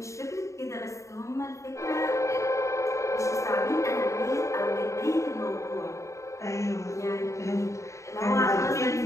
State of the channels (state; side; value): late; right; 0.14 ms